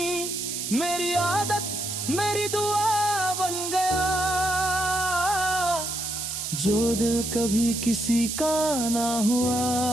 मेरी आदत मेरी दुआ बन गया। जो दिल कभी किसी का ना हुआ,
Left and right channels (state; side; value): noise; right; hiss, 4 dB below the sound